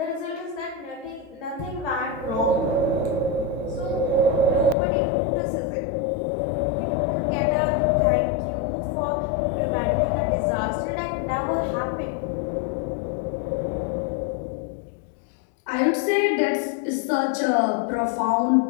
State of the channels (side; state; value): right; drops out; at 4.8 s